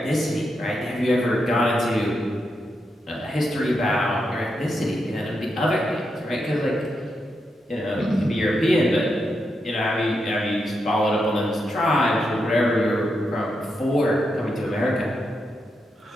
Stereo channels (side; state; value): both; normal; correlation 0.84